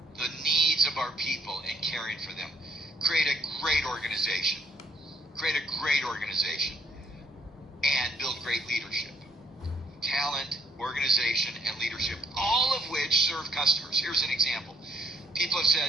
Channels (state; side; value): normal; both; correlation 0.67